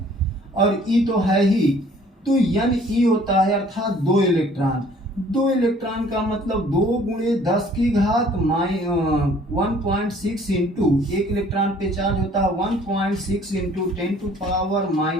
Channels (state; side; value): normal; both; correlation 0.56